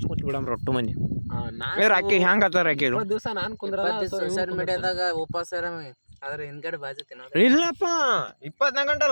ಕೂತ್ ಬಿಡಮ್ರಿ ಒಟ್ಟು ಮಂದಿ. ರಾಕಿ ಹೆಂಗ್ ಆತ ರಾಕಿ ದಿವಸ ನಾನು ಕುಂದ್ರ ಸೋಷಿಯಲ್ ಮೀಡಿಯಾದಾಗ ಉಪವಾಸ ಆದ್ರೆ ಹಿಂದ್ಗಡೆ ಬಾಜು ತಿನ್ನೋದು. ಇಲ್ಲಪ್ಪ 24 ಗಂಟೆ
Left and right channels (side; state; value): both; inverted; correlation -1.00